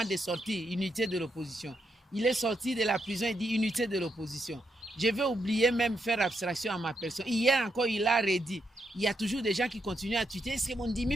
de sortir, unité de l'opposition. Il est sorti de la prison et dit unité de l'opposition. Je vais oublier même faire abstraction à ma personne. Hier encore, il a redit. Il y a toujours des gens qui continuent à tweeter. Est-ce que mon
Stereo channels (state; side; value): normal; both; correlation 0.80